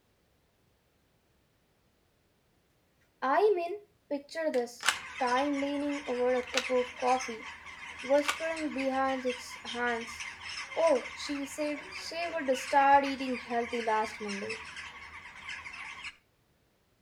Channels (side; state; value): both; identical; correlation 1.00